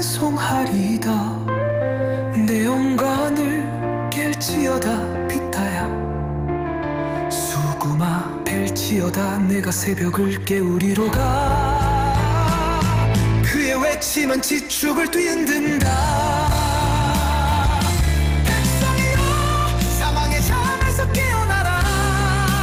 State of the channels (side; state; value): both; identical; correlation 1.00